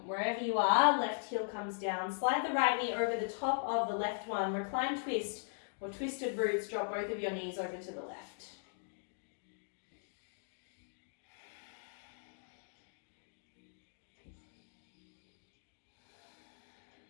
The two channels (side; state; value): right; silent; digital silence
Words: wherever you are, left heel comes down. Slide the right knee over the top of the left one. Recline twist or twisted roots. Drop both of your knees over to the left.